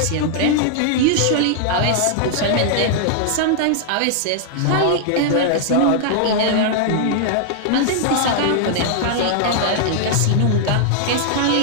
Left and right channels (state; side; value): different; both; correlation -0.01